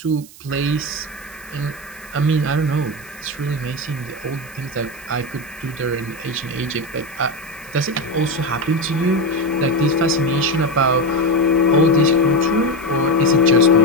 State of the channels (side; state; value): right; noise; hiss, 21 dB below the sound